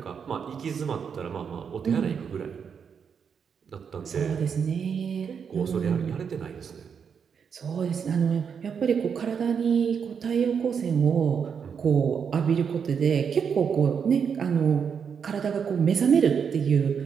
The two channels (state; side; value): quieter; left; 6.8 dB